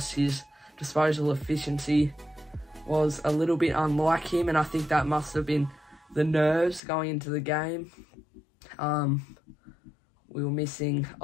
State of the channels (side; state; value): right; drops out; at 6.8 s